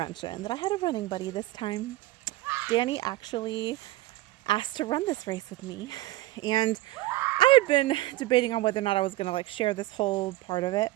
that I had a running buddy this time. Danny actually asked to run this race with me. And I had been debating on whether or not I was going to share this whole part of it.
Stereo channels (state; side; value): quieter; left; 17.5 dB